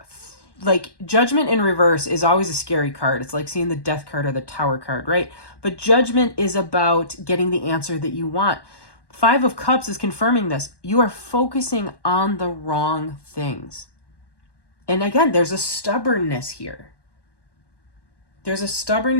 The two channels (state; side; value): late; right; 1.1 ms